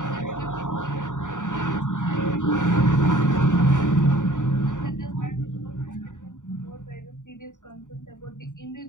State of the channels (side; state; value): right; late; 0.86 ms